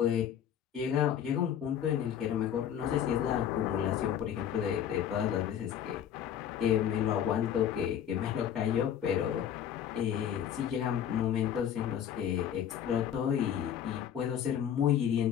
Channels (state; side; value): quieter; right; 9.5 dB